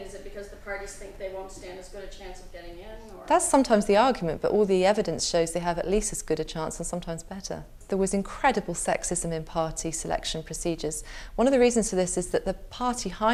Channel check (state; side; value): identical; both; correlation 1.00